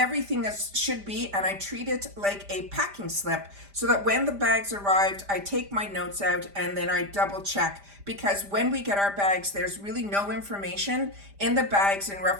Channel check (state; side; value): late; left; 5.0 ms